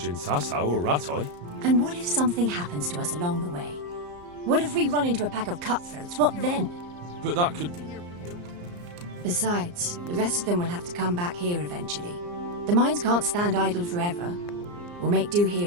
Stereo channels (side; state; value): left; late; 34 ms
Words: in Sasau or Rattay. And what if something happens to us along the way? What if we run into a pack of cutthroats? What then? But that could... Besides, the rest of them will have to come back here eventually. The mines can't stand idle forever. We'll make do